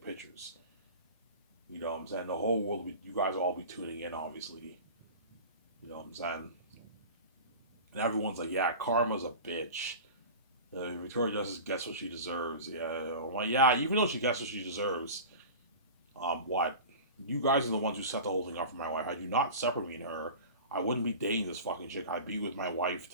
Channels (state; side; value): inverted; both; correlation -0.34